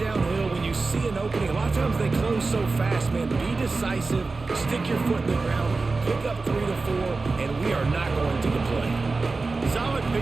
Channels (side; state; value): left; quieter; 3.8 dB